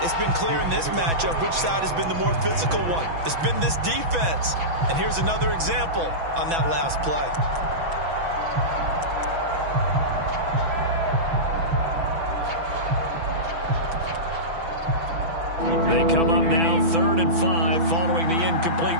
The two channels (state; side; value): late; left; 6.0 ms